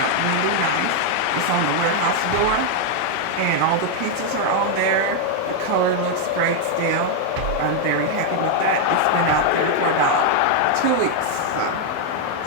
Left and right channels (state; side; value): different; both; correlation 0.00